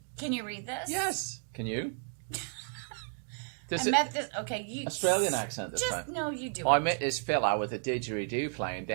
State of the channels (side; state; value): left; silent; 56 dB below the other